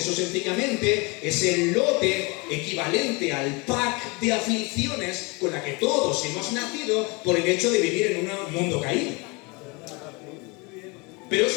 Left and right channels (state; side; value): quieter; right; 28.0 dB